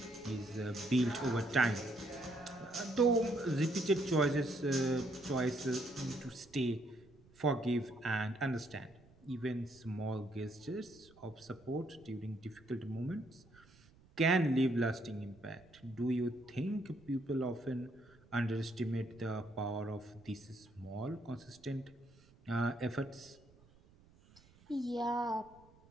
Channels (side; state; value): right; noise; rumble, 27 dB below the sound